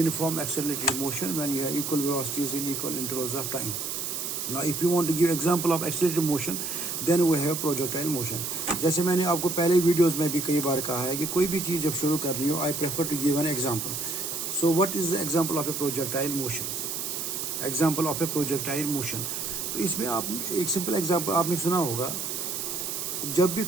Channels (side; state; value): right; noise; hiss, 4 dB below the sound